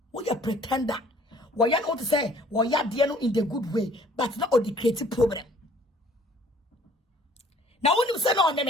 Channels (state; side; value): normal; both; correlation 0.55